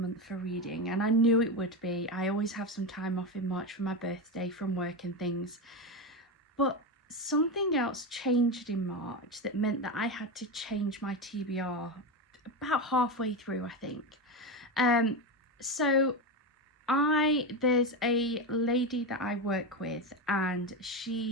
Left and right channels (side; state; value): both; normal; correlation 0.15